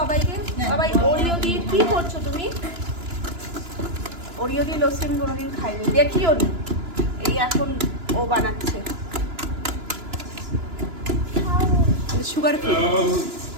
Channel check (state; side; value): late; left; 2.9 ms